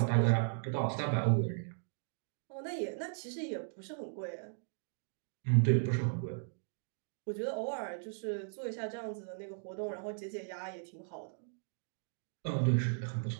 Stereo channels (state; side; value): silent; left; digital silence